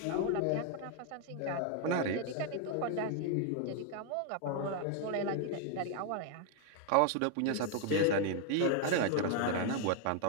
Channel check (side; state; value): both; different; correlation 0.00